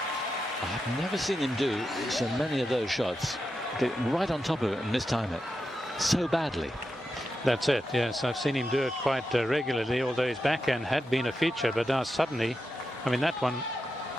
I've never seen him do so many of those shots. Get right on top of it and mistime it so badly. That's it, yes. I've seen him do it quite regularly, although his backhand had been a feature, but now suddenly, I mean, that one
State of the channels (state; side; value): normal; both; correlation 0.88